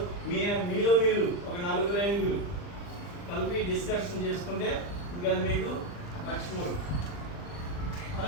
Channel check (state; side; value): late; right; 40 ms